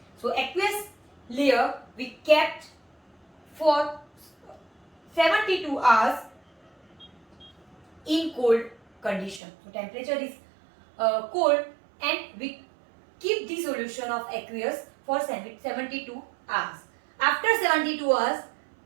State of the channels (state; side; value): drops out; left; at 9.4 s